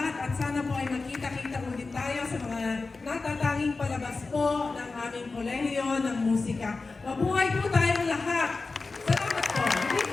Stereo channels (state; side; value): quieter; right; 3.9 dB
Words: at sana po ay magkita-kita ulit tayo sa mga natatanging palabas po ng aming kolehiyo ng musika. Mabuhay po tayong lahat! Salamat po!